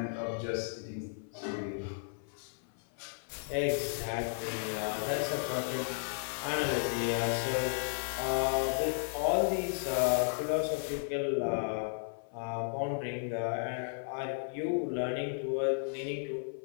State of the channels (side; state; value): right; silent; 55 dB below the other